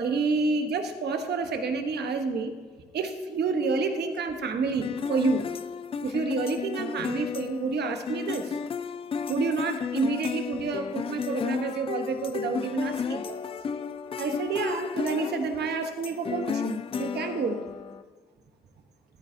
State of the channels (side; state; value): both; normal; correlation 0.54